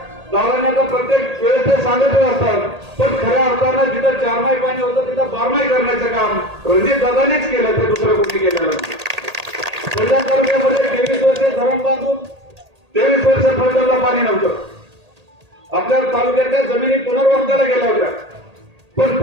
दादांनी आता प्रत्येक वेळेस ते सांगतच असतात, पण खऱ्या अर्थानं जिथं 4 माही पाणी होतं तिथं 12 माही करण्याचं काम रणजित दादांनीच केलं, ते दुसरं कोणी केलेलं नाही. फलटण तालुक्यामध्ये 23 वर्षे धरण बांधून 23 वर्ष फलटणला पाणी नव्हतं. आपल्या तालुक्यातल्या जमिनी पुनर्वसनाला गेल्या होत्या, पण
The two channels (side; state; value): left; late; 1.8 ms